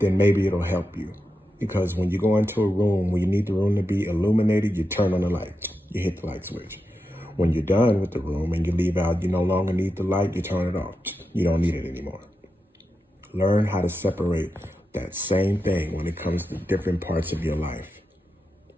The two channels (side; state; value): both; normal; correlation 0.89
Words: maybe it'll help you. Because when you go into a room where you need the room to be illuminated, you turn on the light, you hit the light switch. When you're done with the room and you leave out, you no longer need the light, you turn it off. You don't need it anymore. Learn how to separate that same thing when it comes to different parts of your life.